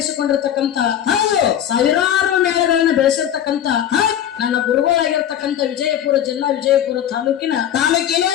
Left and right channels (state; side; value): quieter; right; 10.3 dB